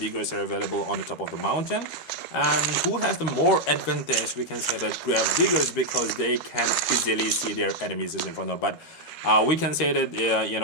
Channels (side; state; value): right; late; 13 ms